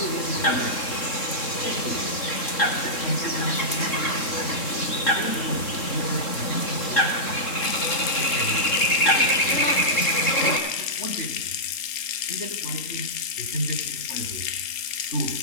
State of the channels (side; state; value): right; late; 3.7 ms